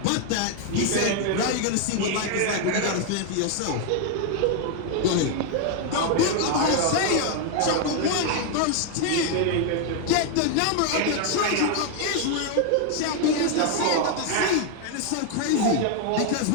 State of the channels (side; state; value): both; different; correlation 0.01